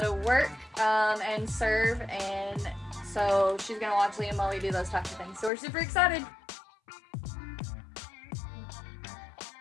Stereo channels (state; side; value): drops out; right; at 5.5 s